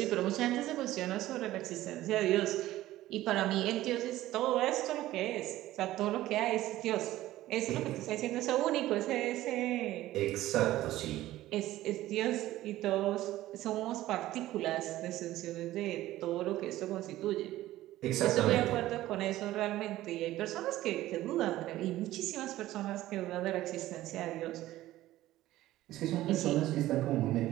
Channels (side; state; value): left; quieter; 15.4 dB